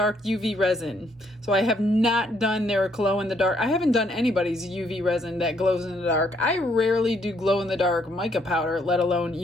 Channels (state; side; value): normal; both; correlation 0.70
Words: UV resin. So I have not done their glow in the dark. I haven't done anybody's UV resin that glows in the dark. I rarely do glow in the dark mica powder, let alone